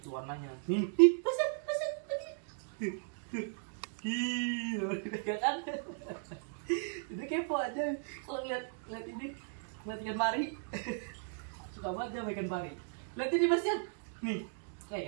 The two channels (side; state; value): left; silent; digital silence